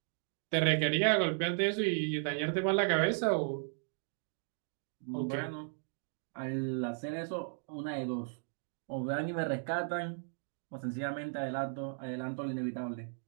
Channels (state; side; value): silent; left; digital silence